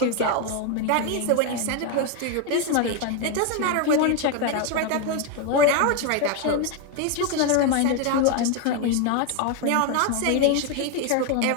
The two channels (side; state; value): both; different; correlation 0.01